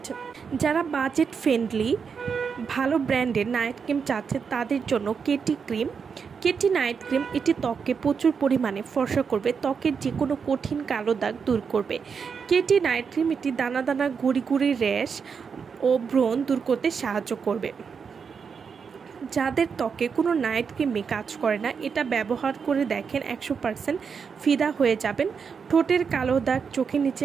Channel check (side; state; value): left; quieter; 6.1 dB